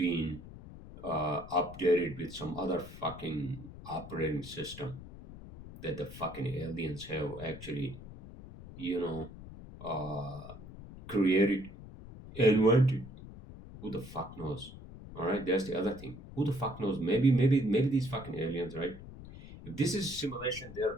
updated with some other fucking operating system that the fucking aliens have actually, you know, uh, created, invented. Who the fuck knows? All right, that's the other thing. Who the fuck knows? Maybe these fucking aliens, right? If this is simulation, they're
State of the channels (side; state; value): left; noise; rumble, 15 dB below the sound